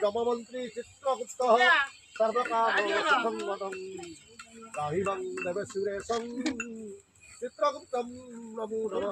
जममंत्री चित्रगुप्तः सर्वकामसंवदं राहिवं देवसुरेशं चित्रगुप्तं नमो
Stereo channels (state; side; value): identical; both; correlation 1.00